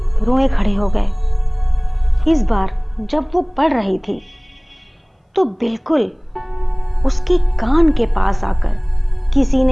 रोए खड़े हो गए। इस बार जब वो पढ़ रही थी तो बिल्कुल उसके कान के पास आकर किसी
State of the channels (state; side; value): identical; both; correlation 1.00